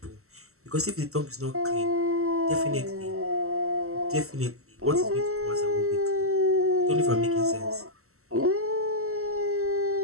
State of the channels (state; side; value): late; left; 0.63 ms